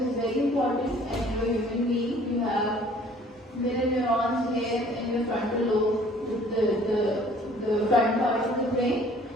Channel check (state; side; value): normal; both; correlation 0.55